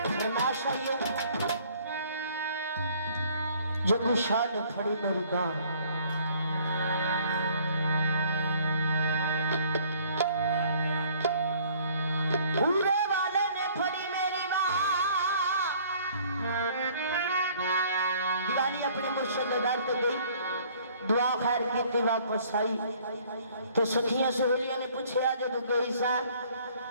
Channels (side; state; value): both; inverted; correlation -0.58